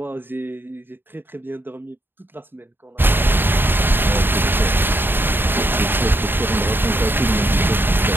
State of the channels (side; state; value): left; late; 0.098 ms